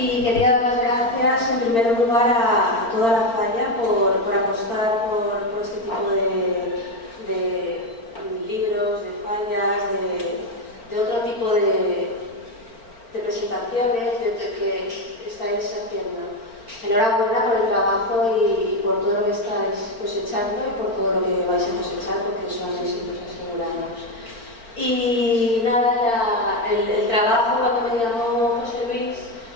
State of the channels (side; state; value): right; late; 4.4 ms